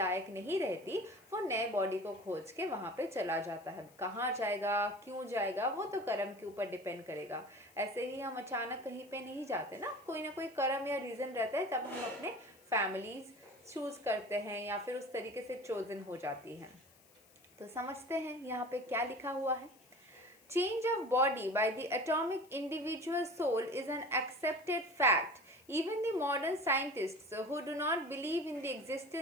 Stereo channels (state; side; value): noise; left; hiss, 27 dB below the sound